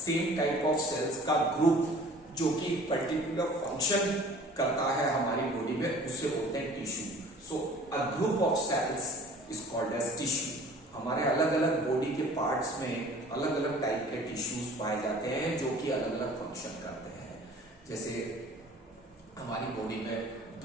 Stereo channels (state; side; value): normal; both; correlation 0.48